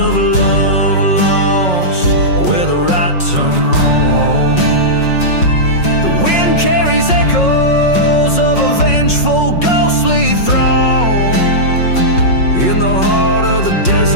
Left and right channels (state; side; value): late; right; 5.4 ms